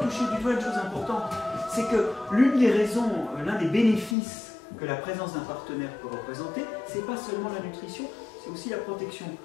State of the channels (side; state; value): right; drops out; at 4.2 s